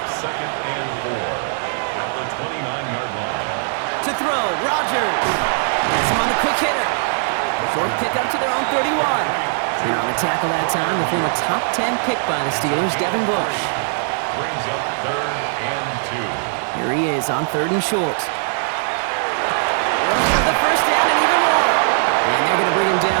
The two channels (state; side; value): silent; left; 66 dB below the other